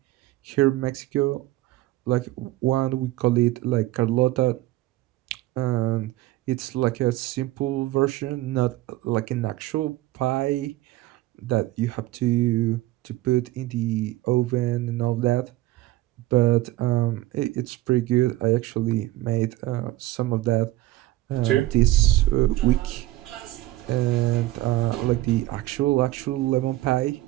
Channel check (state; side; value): quieter; left; 16.8 dB